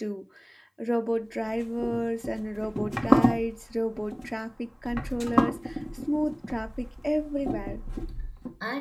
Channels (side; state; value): both; identical; correlation 1.00